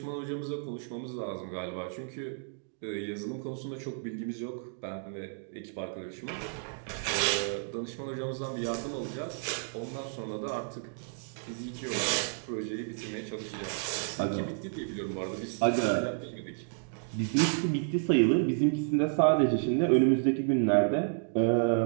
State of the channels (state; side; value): silent; left; digital silence